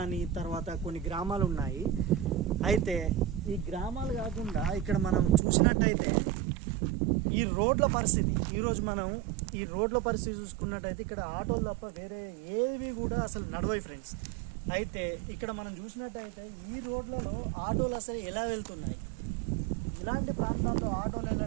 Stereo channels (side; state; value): left; drops out; at 5.4 s